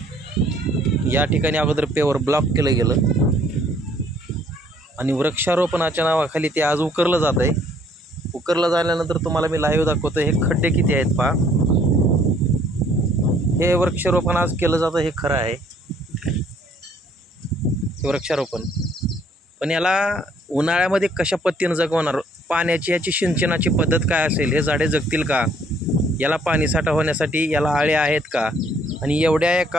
या ठिकाणी अगोदर पेवर ब्लॉक केलं गेलं आणि वृक्षारोपणाच्या नावाखाली ते आज उकरलं जात आहे. उकरलं झाल्यानंतर तुम्हाला मी लाईव्ह दाखवतो. हे खड्डे किती आहेत पहा. हे वृक्षारोपण आज केलं जातं हे खरं आहे, हे वृक्षारोपण. पण याला उन्हाळ्यामध्ये कशा पद्धतीनं जगवणार, पाण्याची याची सिंचनाची पद्धत काय असेल, हे झाडे जगतील का, याला पाणी साठा होण्यासाठी याला आळे आहेत का, आणि एवढ्या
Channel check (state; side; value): normal; both; correlation 0.62